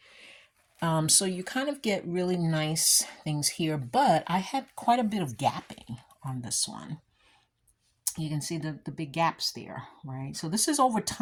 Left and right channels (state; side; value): identical; both; correlation 1.00